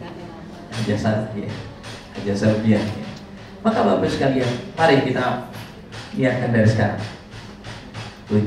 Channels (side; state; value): both; identical; correlation 1.00